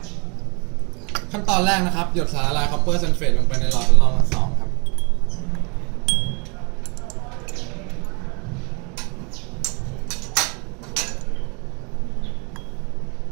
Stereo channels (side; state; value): left; quieter; 33.7 dB